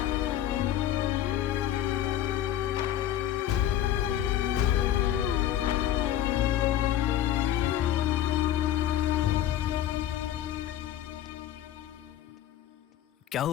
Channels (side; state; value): right; quieter; 11.9 dB